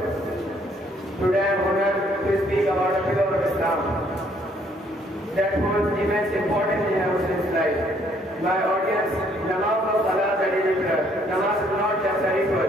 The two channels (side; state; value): both; normal; correlation 0.65